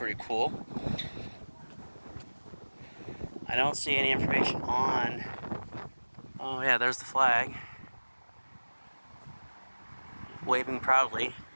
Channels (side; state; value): both; inverted; correlation -1.00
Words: cool. I don't see any information on... Oh yeah, there's the flag. Waving proudly.